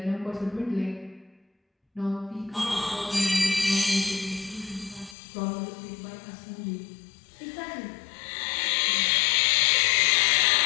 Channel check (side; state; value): right; drops out; at 5.2 s